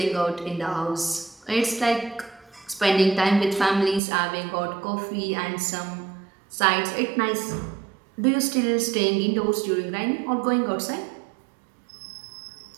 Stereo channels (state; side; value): drops out; left; at 4.0 s